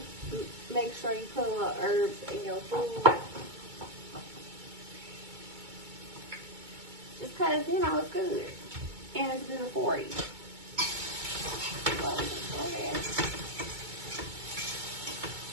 Make sure you put a little herbs in your food. Just because, you know, it's good. And it's good for you. So, go ahead.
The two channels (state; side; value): late; left; 2.2 ms